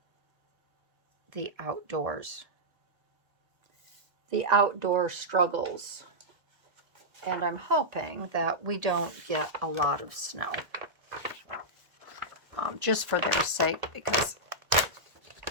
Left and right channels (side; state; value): left; late; 1.7 ms